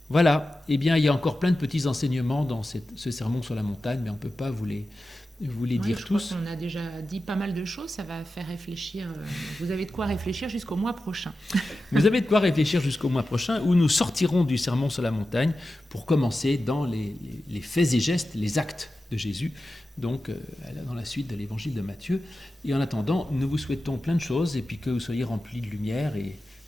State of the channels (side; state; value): both; normal; correlation 0.93